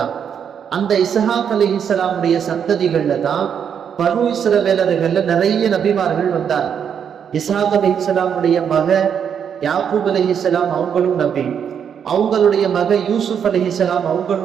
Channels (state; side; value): quieter; left; 7.9 dB